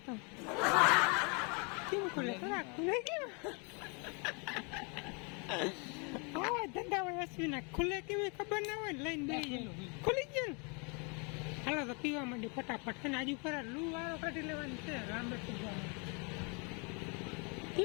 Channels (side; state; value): right; quieter; 33.8 dB